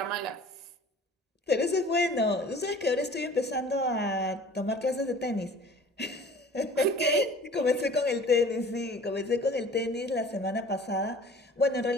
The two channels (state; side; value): normal; both; correlation 0.46